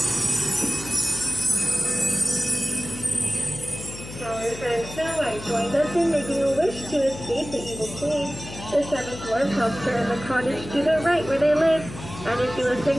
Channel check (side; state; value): left; noise; hum, 13 dB below the sound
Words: Our friend Snow White joined us in making a wish to escape the evil queen. The 7th dwarf helps her in the cottage to the right where they live, and if you listen